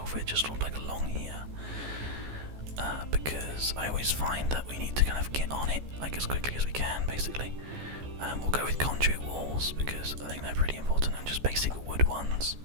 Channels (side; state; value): left; late; 14 ms